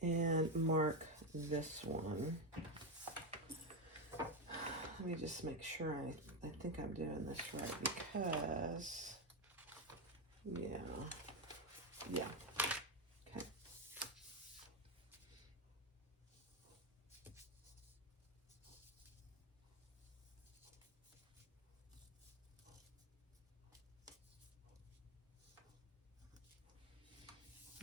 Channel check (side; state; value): both; normal; correlation 0.08